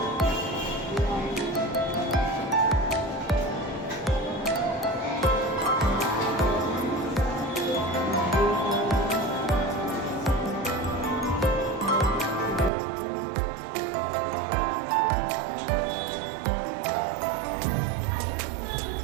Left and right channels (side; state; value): left; drops out; at 12.7 s